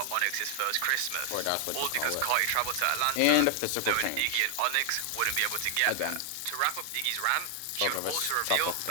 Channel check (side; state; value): both; different; correlation 0.00